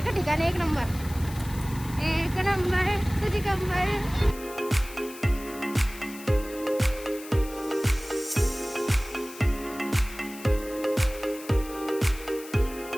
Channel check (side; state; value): left; noise; hiss, 16 dB below the sound